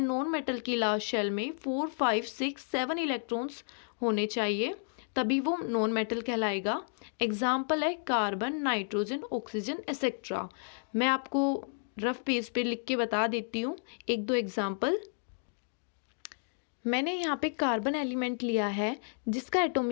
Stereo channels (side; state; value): right; silent; digital silence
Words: नॉन मेटल की लास्ट शेल में 4, 5, 6, 7 इलेक्ट्रॉन्स होने चाहिए, तभी वो नॉन मेटल कहलाएगा। एग्जाम्पल है कार्बन, नाइट्रोजन, ऑक्सीजन एक्सेट्रा। मैं आपको रफ पेज पे लिख के बता देती हूँ 1-2 एग्जाम्पल। मैंने यहाँ पे कार्बन एलिमेंट लिया है जिसका